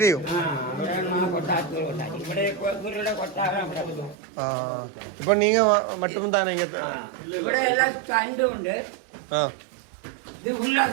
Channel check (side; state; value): left; drops out; at 4.2 s